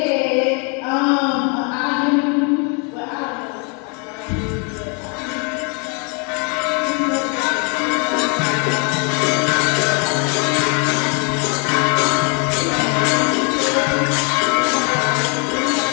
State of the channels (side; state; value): right; quieter; 36.2 dB